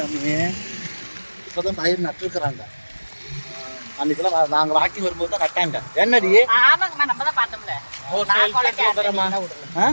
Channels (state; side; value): inverted; both; correlation -1.00